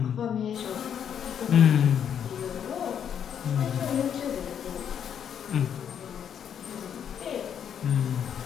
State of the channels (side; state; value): right; quieter; 8.6 dB